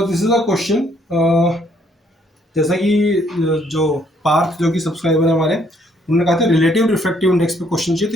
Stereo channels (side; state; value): both; normal; correlation 0.67